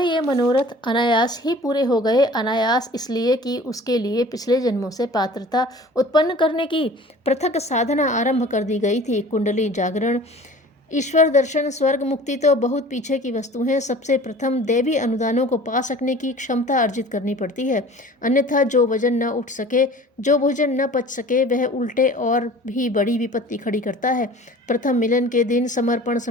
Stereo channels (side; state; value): both; normal; correlation 0.44